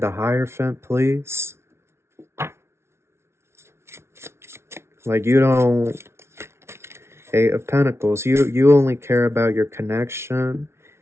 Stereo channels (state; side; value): late; left; 0.13 ms